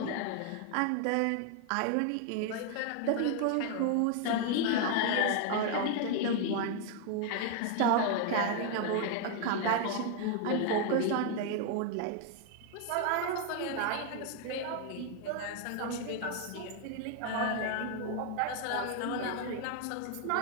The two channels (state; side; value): different; both; correlation 0.00